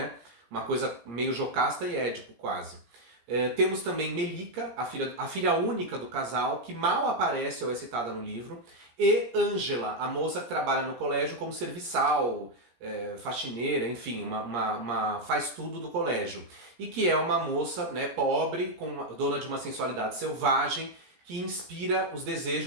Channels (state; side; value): late; left; 17 ms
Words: Uma coisa meio Jocasta e Édipo, quase. Temos também Melica, a filha única do casal, que mal aparece ou é citada no livro, e Ângela, a moça que trabalha no colégio como serviçal, faxineira, enfim, faz tudo do colégio. E que é uma moça, né, pobre, dona de uma sensualidade selvagem, que inspira os